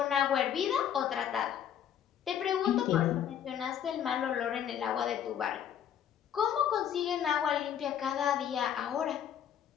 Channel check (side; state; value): right; quieter; 9.4 dB